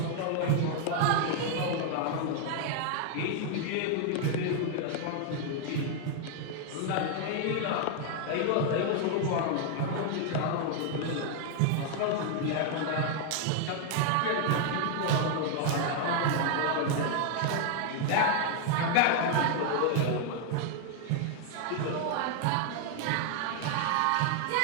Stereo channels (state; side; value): different; both; correlation 0.00